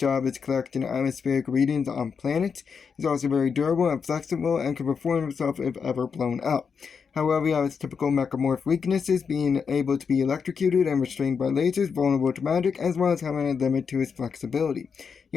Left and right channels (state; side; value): quieter; right; 6.1 dB